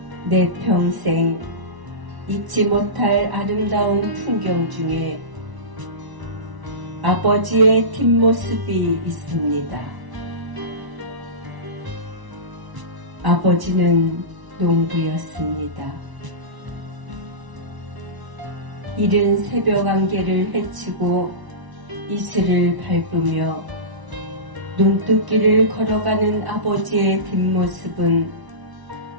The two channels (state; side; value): late; left; 1.0 ms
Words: 내 평생 잊지 못할 아름다운 풍경 중에 아버지의 뒷모습이 있습니다. 아버지는 농부였습니다. 이른 새벽 안개를 헤치고 이슬을 밟으며 눈뜨기를 걸어가는 아버지의 뒷모습은